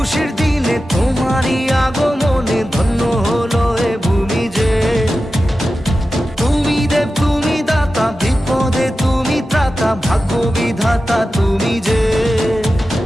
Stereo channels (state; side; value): normal; both; correlation 0.93